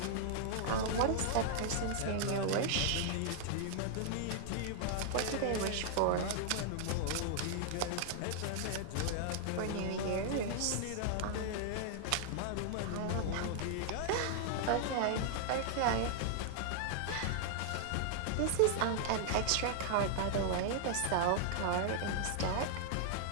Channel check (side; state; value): both; different; correlation -0.01